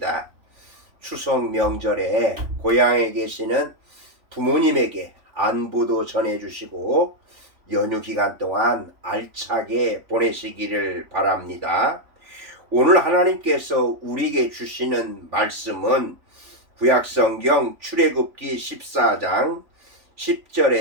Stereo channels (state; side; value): late; left; 3.4 ms